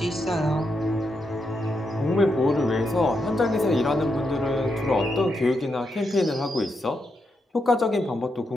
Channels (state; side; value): normal; both; correlation 0.83